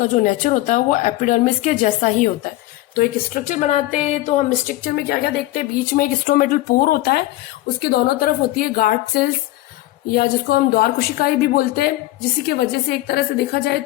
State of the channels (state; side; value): quieter; right; 17.0 dB